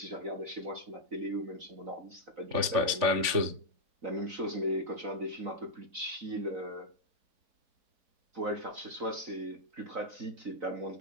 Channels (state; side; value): late; left; 3.5 ms